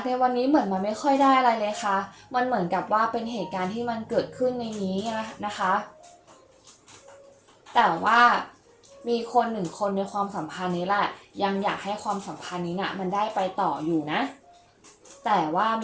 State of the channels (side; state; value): both; identical; correlation 1.00